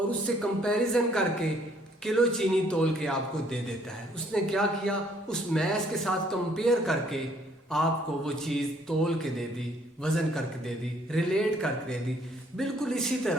उससे कंपैरिजन करके किलो चीनी तोल के आपको दे देता है। उसने क्या किया, उस मैस के साथ कंपेयर करके आपको वो चीज़ तोल के दे दी, वज़न करके दे दी, रिलेट करके दे दी। बिल्कुल इसी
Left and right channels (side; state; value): both; normal; correlation 0.63